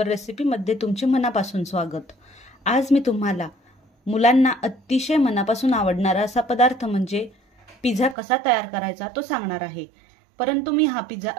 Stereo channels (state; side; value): drops out; left; at 8.2 s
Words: रेसिपीमध्ये तुमचे मनापासून स्वागत। आज मी तुम्हाला मुलांना अतिशय मनापासून आवडणारा असा पदार्थ म्हणजे पिझ्झा कसा तयार करायचा तो सांगणार आहे। परंतु मी हा पिझ्झा